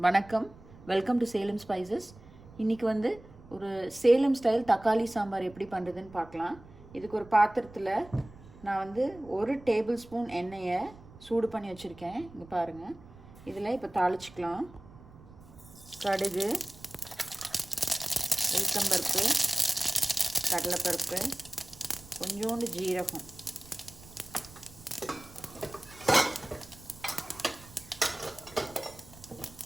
வணக்கம், welcome to Salem spices. இன்றைக்கி வந்து ஒரு சேலம் ஸ்டைல் தக்காளி சாம்பார் எப்படி பண்ணுறதுன்னு பார்க்கலாம். இதுக்கு ஒரு பாத்திரத்தில் நான் வந்து 1 டேபிள் ஸ்பூன் எண்ணெயை சூடு பண்ணி வச்சுருக்கேன். இங்கே பாருங்கள். இதில் இப்போ தாளிச்சிக்கலாம். கடுகு, உளுத்தம்பருப்பு, கடலைப்பருப்பு, கொஞ்சோண்டு ஜீரகம்,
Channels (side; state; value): right; noise; rumble, 20 dB below the sound